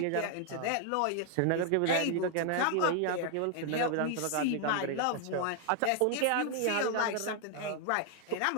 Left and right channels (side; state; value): both; different; correlation 0.00